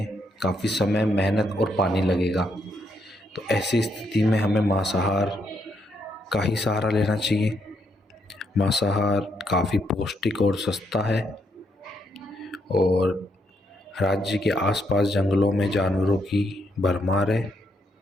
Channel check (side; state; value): both; normal; correlation 0.77